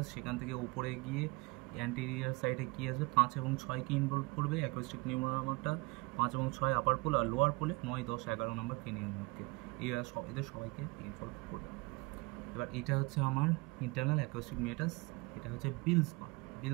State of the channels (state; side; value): quieter; left; 26.6 dB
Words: সেখান থেকে উপরে গিয়ে অ্যান্টেরিয়ার সাইডে কী আসবে, 5 এবং 6কে ইনভলভ করবে অ্যাকোস্টিক নিউরোমাটা। 5 এবং 6 আপার পোল, আর লোয়ার পোলে 9, 10, 11 নম্বর ক্রেনিয়ামকে, এদের সবাইকে ইনভলভ করবে। এবার এটা হচ্ছে আমার ইন্টারনাল অ্যাকোস্টিক মিটাস। এটা হচ্ছে